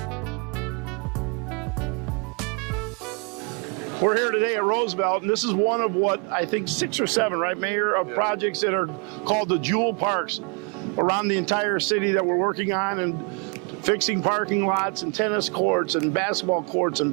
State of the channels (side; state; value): left; quieter; 35.8 dB